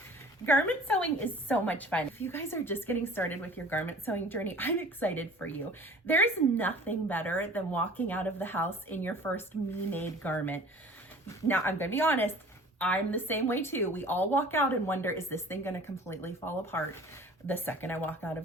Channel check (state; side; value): normal; both; correlation 0.46